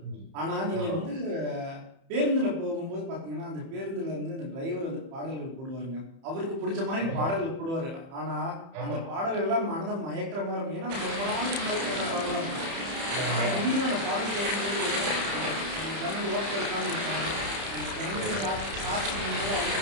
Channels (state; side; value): late; left; 30 ms